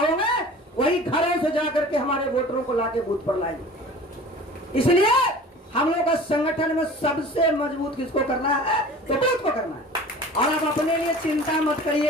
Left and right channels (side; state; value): both; normal; correlation 0.42